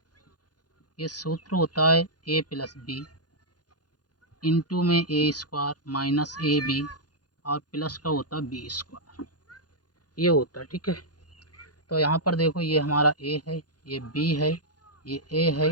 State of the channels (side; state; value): right; late; 0.69 ms